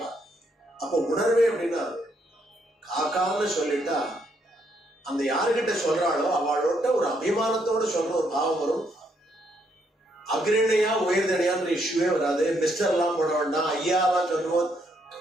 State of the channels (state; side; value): normal; both; correlation 0.74